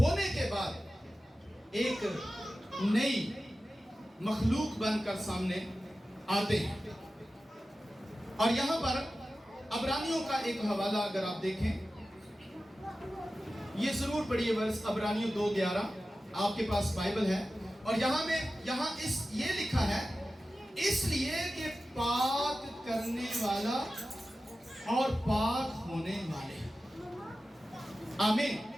के बाद एक नई मखलूक बनकर सामने आते हैं। और यहां पर अबरानियों का एक हवाला अगर आप देखें, ये जरूर पढ़िए वर्ष अबरानियों 2:11, आपके पास बाइबल है। और यहां ये लिखा है, इसलिए कि पाक करने वाला और पाक होने वाले। आमीन।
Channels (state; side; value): normal; both; correlation 0.94